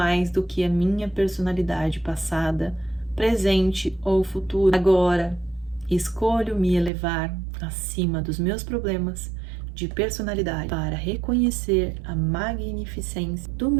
do que a minha personalidade passada, presente ou futuro. Agora, escolho me elevar acima dos meus problemas de personalidade para reconhecer a magnificência do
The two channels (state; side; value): drops out; left; at 6.9 s